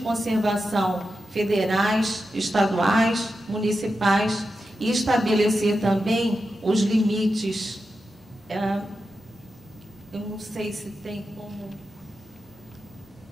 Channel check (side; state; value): both; normal; correlation 0.90